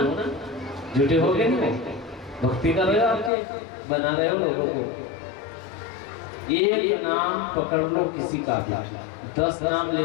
झूठे हो गए नहीं, भक्ति कर रहे हो, आपके बना रहे हो लोगों को। एक नाम पकड़ लो किसी का भी, 10 नाम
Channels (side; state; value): right; drops out; at 3.3 s